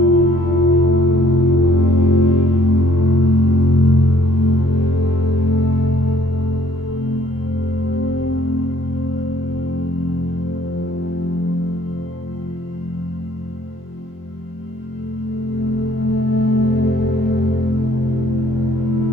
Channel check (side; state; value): right; late; 24 ms